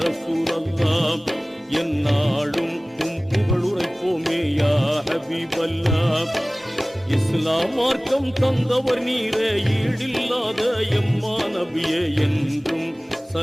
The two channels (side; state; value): both; normal; correlation 0.98